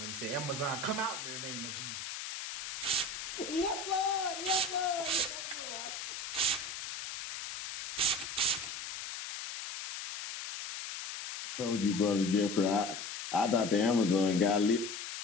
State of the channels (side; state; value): left; noise; hiss, 7 dB below the sound